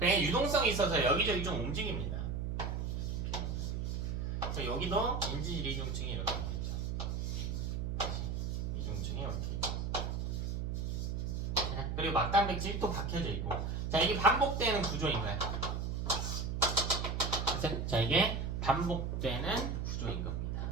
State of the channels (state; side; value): noise; right; hum, 1 dB below the sound